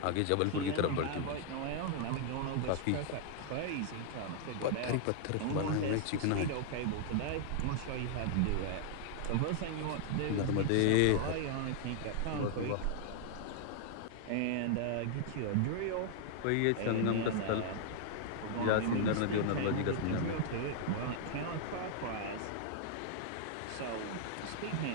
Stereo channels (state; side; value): different; both; correlation 0.00